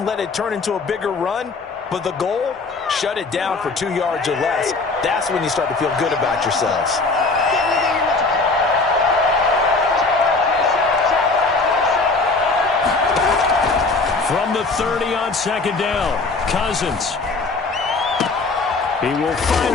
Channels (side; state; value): right; quieter; 3.8 dB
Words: let it turn into a bigger run, but the goal, shut it down for 2 yards or less. That's when you start to feel good about yourselves. From the 30 on 2nd down, Cousins. He will